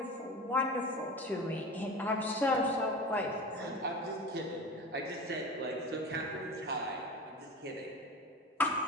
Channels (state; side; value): normal; both; correlation 0.31